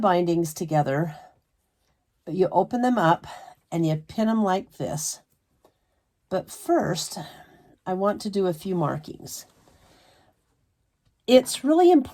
together. You open them up and you pin them like this. But first, I want to do a few markings. It's really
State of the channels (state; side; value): identical; both; correlation 1.00